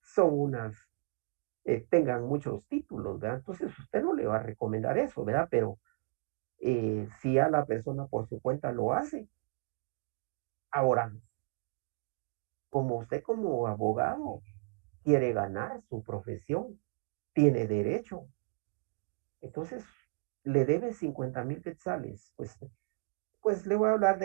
son tengan muchos títulos, ¿verdad? Entonces usted no le va a recomendar eso, ¿verdad? Pero si a la persona por su cuenta lo hace. Ahora, como usted como abogado quiere ganar su profesión, tiene derecho. Entonces, le debe 50,000 quetzales. Pues le voy a hablar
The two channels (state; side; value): quieter; left; 34.0 dB